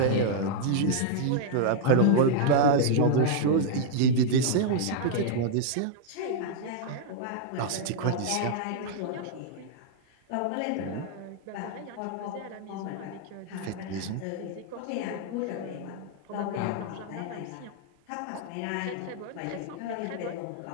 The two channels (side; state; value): both; different; correlation -0.01